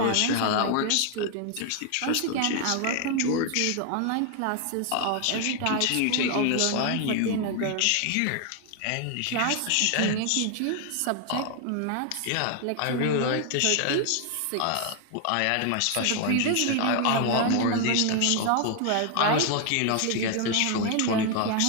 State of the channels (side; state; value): both; different; correlation 0.00